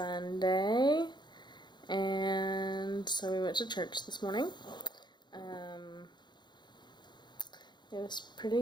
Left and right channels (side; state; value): right; late; 0.21 ms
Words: and so we went to church this morning. It was